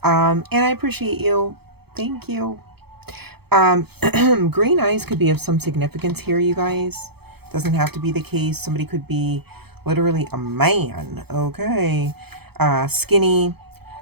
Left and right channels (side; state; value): left; late; 0.97 ms